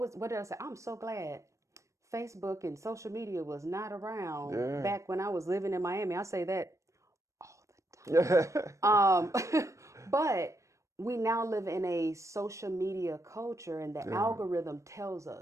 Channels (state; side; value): late; left; 0.15 ms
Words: did I say? I'm so glad Facebook and social media was not around Yeah. back when I was living in Miami. I say that all the Yeah. time. But we now live in a social media culture, and the Yeah. algorithm tells